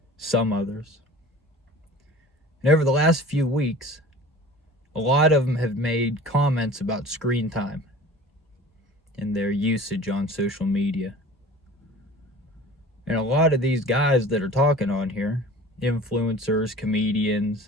some others. And over the last few weeks, a lot of them have made comments about screen time and their usage on social media. And a lot of these guys that are talking on here, influencers,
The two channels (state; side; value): normal; both; correlation 0.42